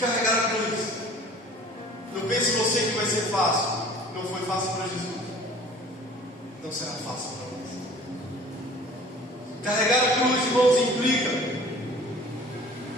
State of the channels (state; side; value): normal; both; correlation 0.48